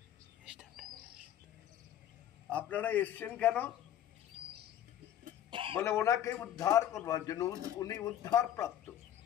আপনারা এসছেন কেন? বলে ওনাকে উদ্ধার করবার জন্য। উনি উদ্ধার প্রাপ্ত,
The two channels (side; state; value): right; quieter; 11.1 dB